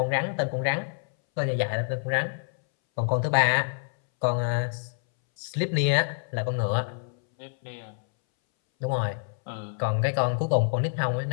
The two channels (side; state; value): right; silent; 60 dB below the other